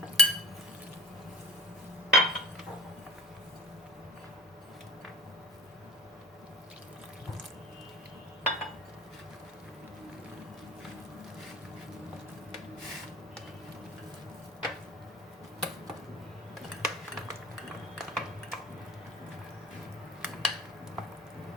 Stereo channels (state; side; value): normal; both; correlation 0.40